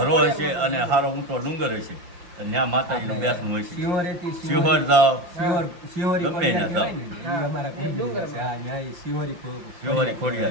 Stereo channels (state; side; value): late; left; 5.7 ms